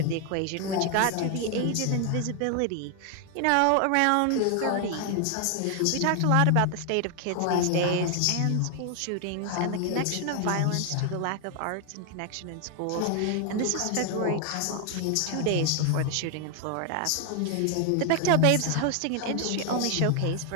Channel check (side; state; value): both; different; correlation 0.00